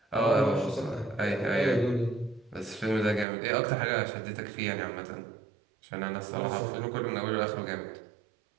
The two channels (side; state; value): left; drops out; at 3.2 s